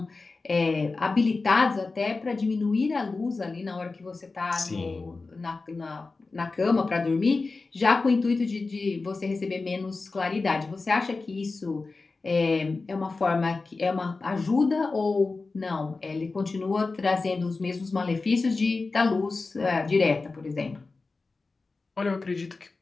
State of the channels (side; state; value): right; quieter; 3.8 dB